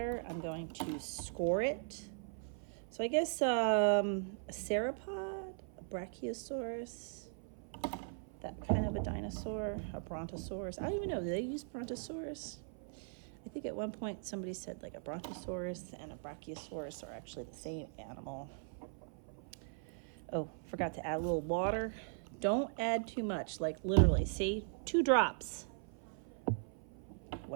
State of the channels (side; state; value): left; silent; 51 dB below the other